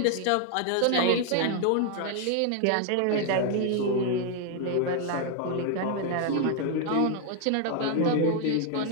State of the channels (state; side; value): different; both; correlation 0.00